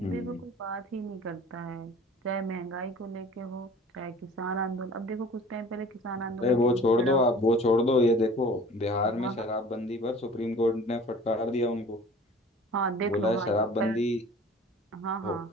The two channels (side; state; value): both; normal; correlation 0.46